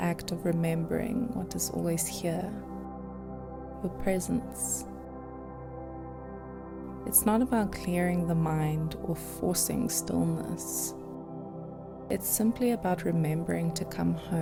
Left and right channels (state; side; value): identical; both; correlation 1.00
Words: act of remembering what is always here, your presence. It's not about clearing the mind or forcing stillness. It's simply about remembering to come